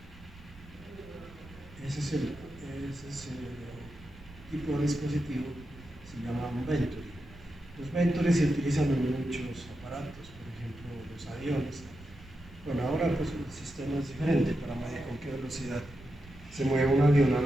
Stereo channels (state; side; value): noise; right; rumble, 20 dB below the sound